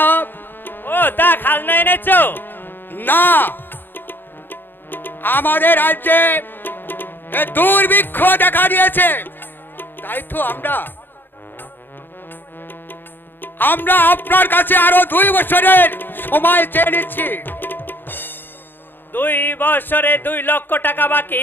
ও তা খাজনা এনেছো? না, আমাদের রাজ্যে দুর্ভিক্ষ দেখা দিয়েছে, তাই তো আমরা আপনার কাছে আরো 2 বছরের সময় চেয়ে নিচ্ছি। 2 বছরে 2 লক্ষ টাকা বাকি,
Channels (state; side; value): late; right; 0.095 ms